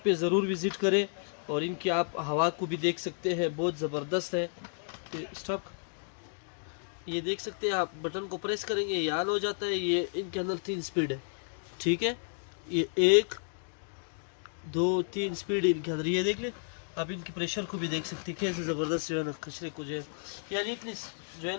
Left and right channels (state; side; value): silent; right; digital silence